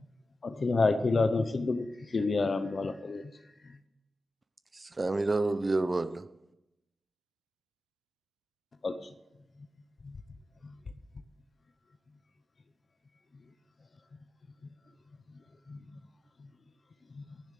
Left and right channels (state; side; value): normal; both; correlation 0.93